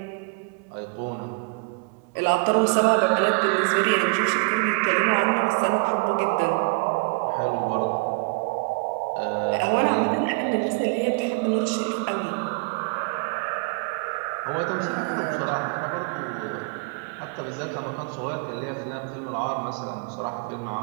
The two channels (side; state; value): left; quieter; 32.7 dB